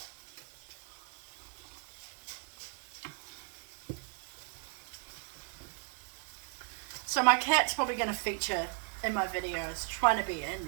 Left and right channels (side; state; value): left; quieter; 35.7 dB